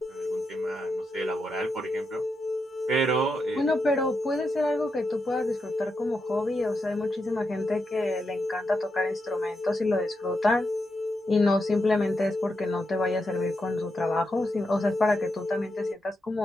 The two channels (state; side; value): normal; both; correlation 0.85